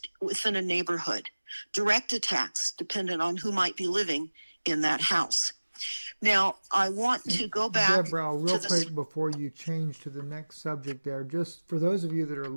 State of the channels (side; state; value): both; inverted; correlation -1.00